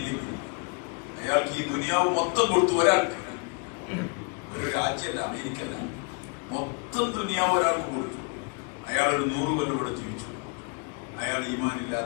അയാൾക്ക് ഈ ദുനിയാവ് മൊത്തം കൊടുത്തു. ഒരാൾക്ക്, ഒരു രാജ്യമല്ല, അമേരിക്കല്ല, മൊത്തം ദുനിയാവ് ഒരാൾക്ക് കൊടുത്തു. അയാൾ ഒരു 100 കൊല്ലം ഇവിടെ ജീവിച്ചു. അയാൾ ഈമാൻ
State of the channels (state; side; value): quieter; right; 35.1 dB